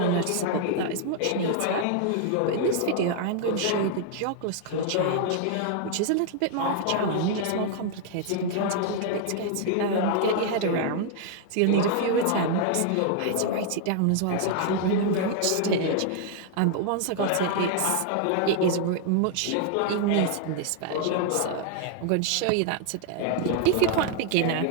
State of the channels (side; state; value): both; different; correlation 0.00